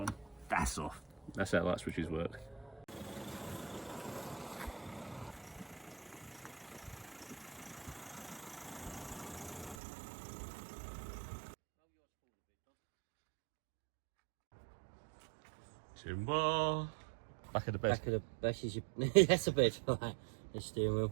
That's off. That's how light switches work. Timber. Back of the bed. Back of the back is your that's a bed, right? The steering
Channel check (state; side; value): drops out; left; at 9.8 s